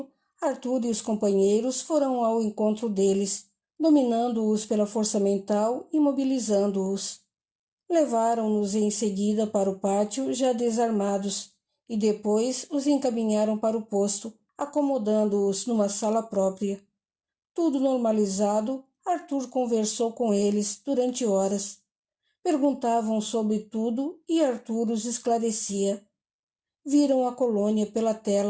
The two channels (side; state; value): both; identical; correlation 1.00